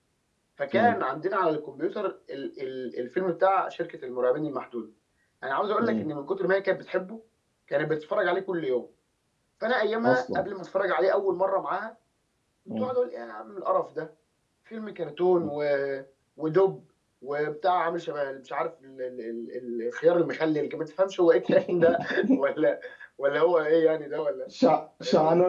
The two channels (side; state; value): both; identical; correlation 1.00